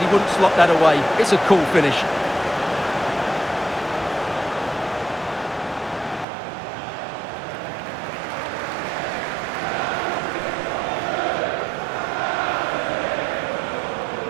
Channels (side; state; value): left; drops out; at 6.2 s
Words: he wouldn't slot that away. It's a cool finish.